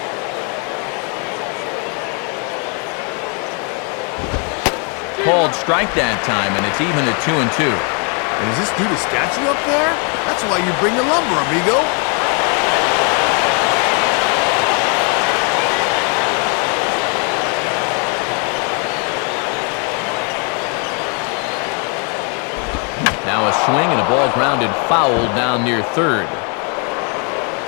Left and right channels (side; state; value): right; quieter; 37.4 dB